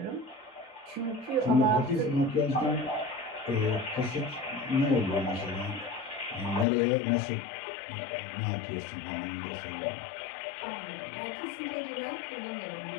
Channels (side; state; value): right; drops out; at 6.7 s